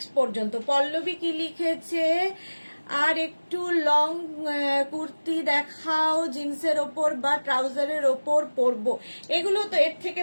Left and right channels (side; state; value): both; inverted; correlation -1.00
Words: পর্যন্ত। পল্লবী কি লিখেছে? আর একটু লং কুর্তি দেখাও, জিন্সের ওপর বা ট্রাউজারের ওপর পরবো। এগুলো তো এর থেকে